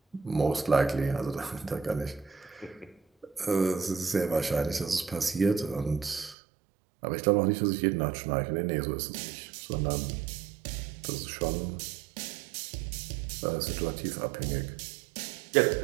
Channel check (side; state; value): left; drops out; at 6.4 s